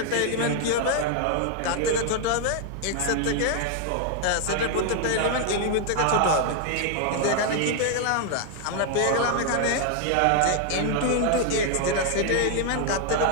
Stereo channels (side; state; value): both; different; correlation 0.00